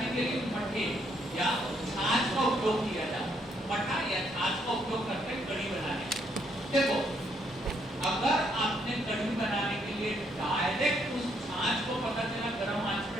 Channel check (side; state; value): both; normal; correlation 0.72